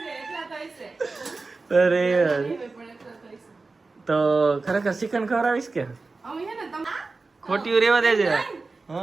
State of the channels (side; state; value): left; quieter; 3.8 dB